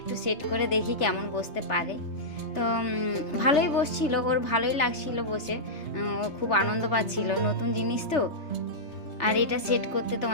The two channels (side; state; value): right; late; 3.3 ms